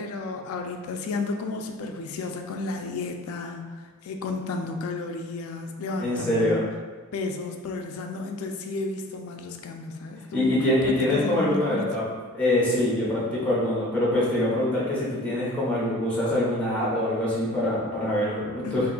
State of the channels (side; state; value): both; normal; correlation 0.46